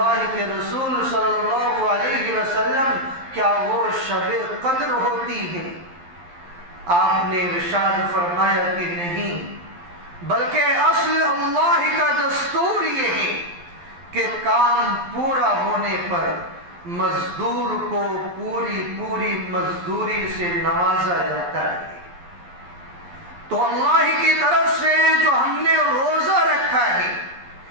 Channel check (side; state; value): left; late; 11 ms